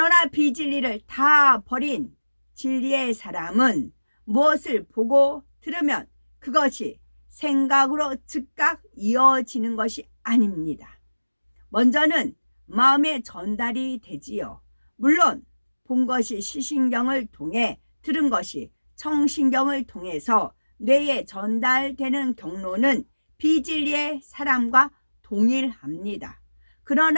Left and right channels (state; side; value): inverted; both; correlation -1.00